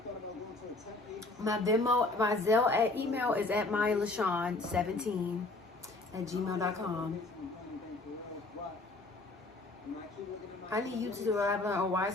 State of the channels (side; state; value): right; quieter; 3.0 dB